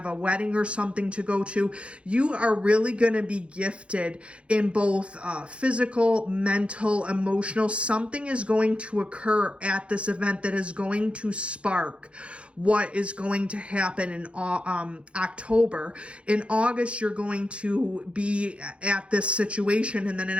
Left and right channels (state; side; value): late; left; 0.060 ms